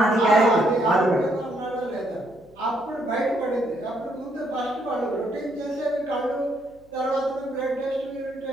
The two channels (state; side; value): noise; left; hum, 30 dB below the sound